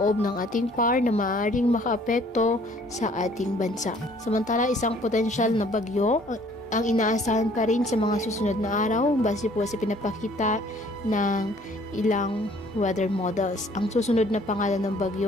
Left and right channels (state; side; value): normal; both; correlation 0.58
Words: ng ating PAR na maaaring makaapekto sa ating bansa. Samantala, isang potensyal na bagyo ang inaasahan pa rin sa mga susunod na araw base po sa pinapakita ng ilang weather models. Ang susunod na pangalan ng